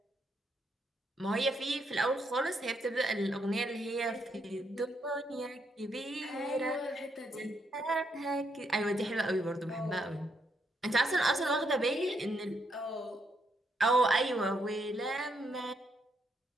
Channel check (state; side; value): normal; both; correlation 0.77